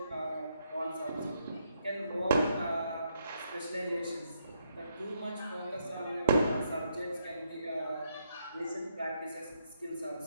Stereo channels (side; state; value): both; inverted; correlation -0.77